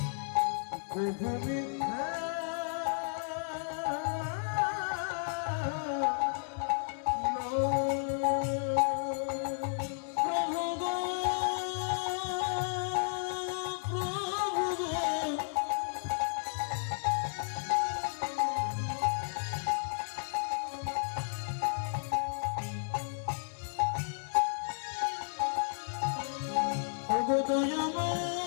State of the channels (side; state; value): right; silent; digital silence